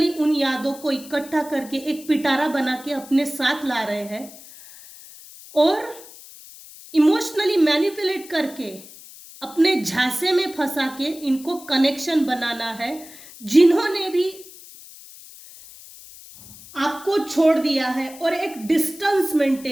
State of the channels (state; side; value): noise; left; hiss, 18 dB below the sound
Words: उन यादों को इकट्ठा करके एक पिटारा बना के अपने साथ ला रहे हैं और इमोशनली मैनिपुलेट करके अपने झांसे में फंसा के इनको कनेक्शन बनाना है। जिन्होंने भी आपको छोड़ दिया है और एक डिस्टेंस